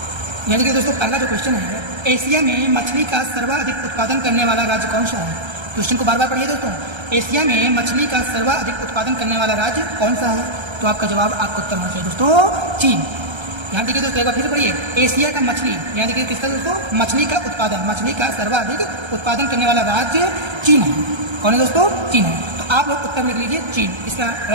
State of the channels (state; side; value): late; left; 1.3 ms